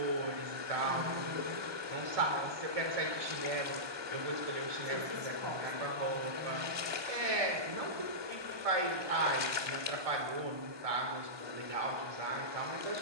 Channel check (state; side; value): late; left; 1.2 ms